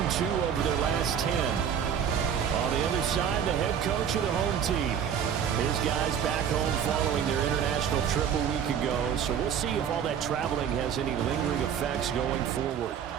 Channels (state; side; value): quieter; left; 8.1 dB